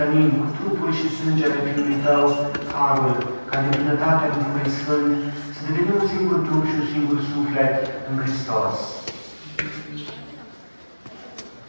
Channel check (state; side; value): inverted; both; correlation -1.00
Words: cu trupul și sângele Fiului Tău, harul, ca de bunătatea Duhului Sfânt, să devenim un singur trup și un singur suflet în Hristos.